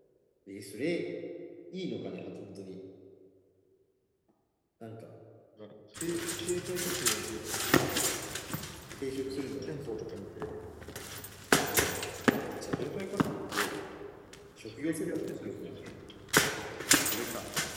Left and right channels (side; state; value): both; identical; correlation 1.00